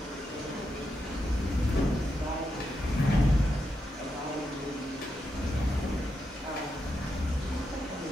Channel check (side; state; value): both; normal; correlation 0.85